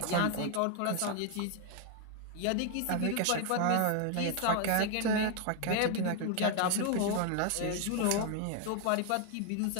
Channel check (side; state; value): both; different; correlation 0.00